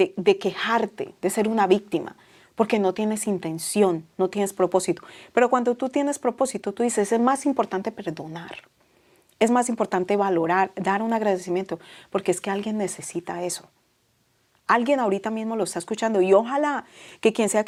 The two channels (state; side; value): identical; both; correlation 1.00